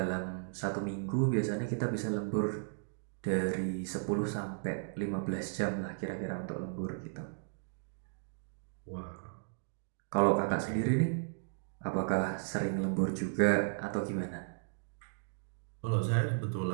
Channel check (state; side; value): silent; left; digital silence